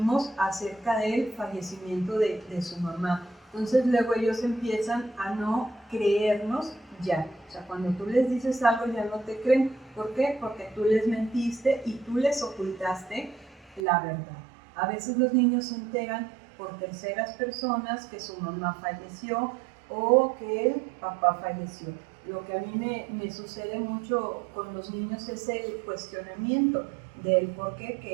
acerca del fallecimiento de su mamá. Entonces luego ellos empiezan a no creernos ya. O sea, cuando tú les dices algo ya no te creen. ¿Por qué? Porque tú les mentiste y tú les ocultaste la verdad. A veces los niños se enteran por terceras personas que su mamá falleció o que el papá falleció. Lo que a mí me sucede mucho con los niños es el cuestionamiento del por qué,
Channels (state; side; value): drops out; left; at 13.9 s